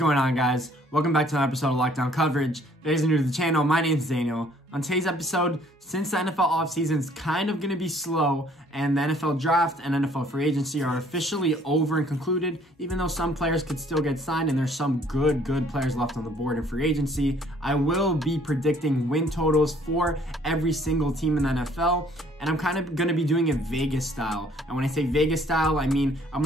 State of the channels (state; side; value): normal; both; correlation 0.60